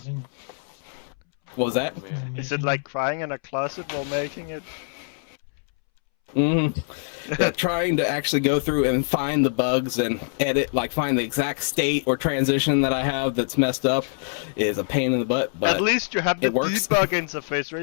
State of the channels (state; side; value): silent; right; 62 dB below the other